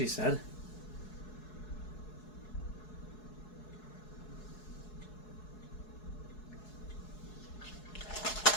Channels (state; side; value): late; right; 4.7 ms